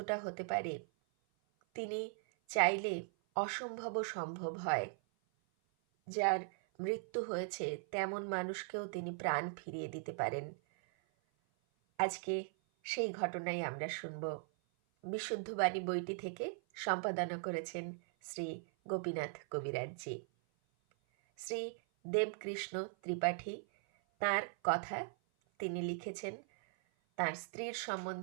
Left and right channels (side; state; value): left; silent; 52 dB below the other